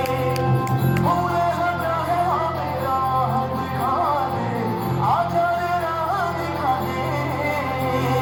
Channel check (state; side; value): identical; both; correlation 1.00